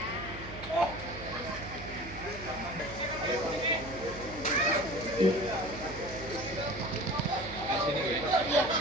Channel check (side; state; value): right; noise; hum, 13 dB below the sound